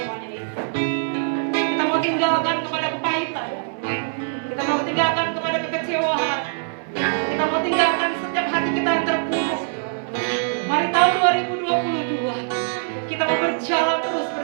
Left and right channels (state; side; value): silent; left; digital silence